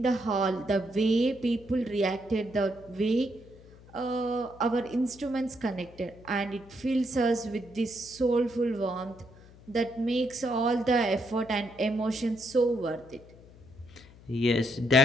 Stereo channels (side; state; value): left; noise; hum, 22 dB below the sound